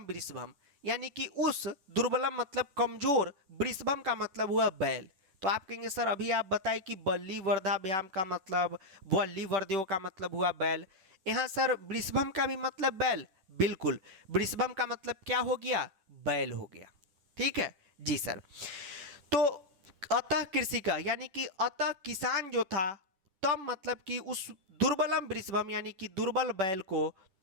वृषभम यानी कि उस दुर्बलम मतलब कमजोर, वृषभम का मतलब हुआ बैल। तो आप कहेंगे सर अभी आप बताए कि बल्ली वर्धाभ्याम का मतलब, वल्ली वर्ध्यो का मतलब हुआ बैल, यहाँ सर वृषभम का भी मतलब बैल, बिल्कुल, वृषभम का मतलब क्या हो गया, बैल हो गया, ठीक है जी सर। तो अतः कृषि का यानी कि अतः किसान जो था, तब मतलब कि उस दुर्बलम वृषभम यानी कि दुर्बल बैल को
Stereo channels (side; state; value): left; late; 10 ms